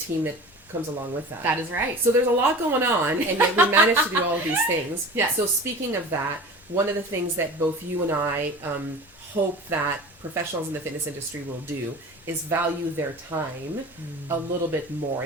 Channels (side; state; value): both; normal; correlation 0.37